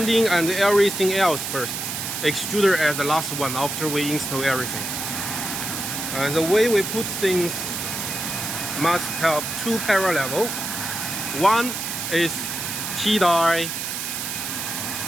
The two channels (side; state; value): right; noise; hiss, 4 dB below the sound